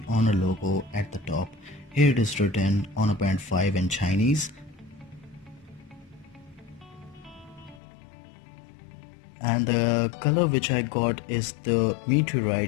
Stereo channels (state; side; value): drops out; right; at 7.8 s